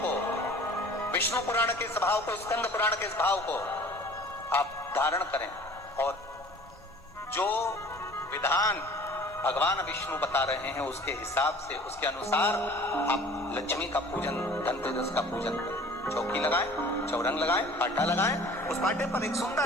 को, विष्णु पुराण के इस भाव को, स्कंद पुराण के इस भाव को आप धारण करें, और जो विधान भगवान विष्णु बता रहे हैं उसके हिसाब से, उसके अनुसार आप लक्ष्मी का पूजन, धनतेरस का पूजन करें। चौकी लगाएं, चौरंग लगाएं, पाटा लगाएं, उस पाटे पर एक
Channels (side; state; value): both; normal; correlation 0.48